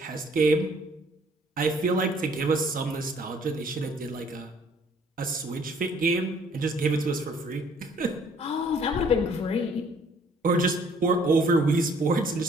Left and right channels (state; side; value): normal; both; correlation 0.60